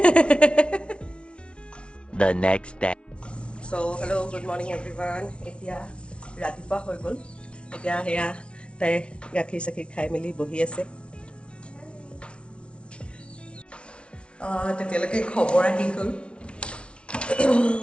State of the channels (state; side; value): late; right; 0.059 ms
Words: The next day. So' hello', good morning everyone. এতিয়া ৰাতিপুৱা হৈ গ'ল। এতিয়া সেয়া তাই গাখীৰ চাখীৰ খাই মেলি বহি আছে। তেতিয়ালৈকে খবৰ আহি গ'ল